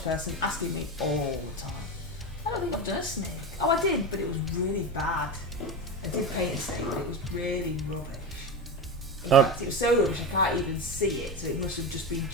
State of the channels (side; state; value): both; normal; correlation 0.20